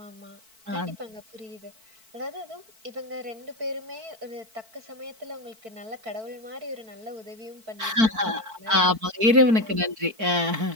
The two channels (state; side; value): late; left; 4.5 ms